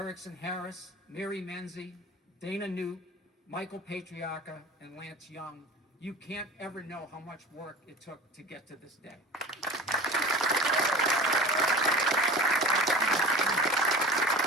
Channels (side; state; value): both; normal; correlation 0.36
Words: Harris, Mary Menzie, Dana Newt, Michael Patriarca, and Lance Young. You can't ever know how much work it took to get to this day.